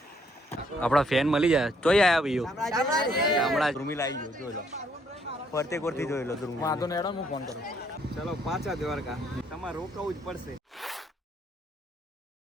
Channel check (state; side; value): normal; both; correlation 0.69